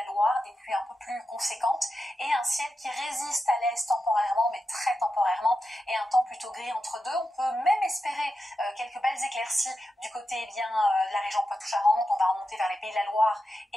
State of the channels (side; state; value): both; normal; correlation 0.89